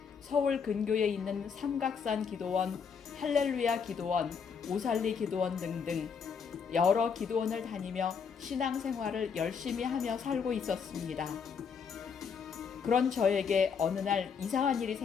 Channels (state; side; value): quieter; right; 6.3 dB